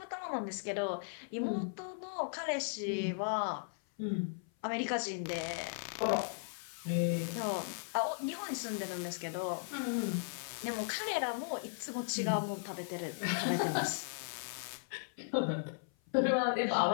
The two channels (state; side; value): silent; right; 53 dB below the other